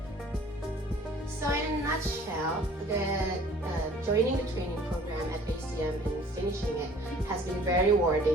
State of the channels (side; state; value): both; normal; correlation 0.52